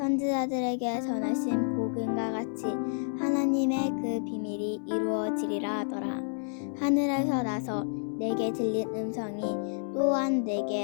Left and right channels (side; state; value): right; silent; 58 dB below the other